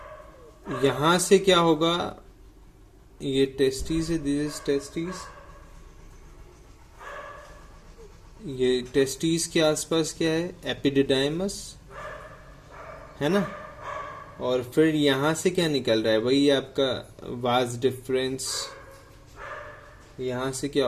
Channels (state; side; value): identical; both; correlation 1.00